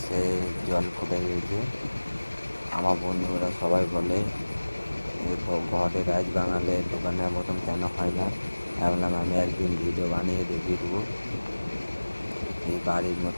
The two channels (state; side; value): inverted; both; correlation -1.00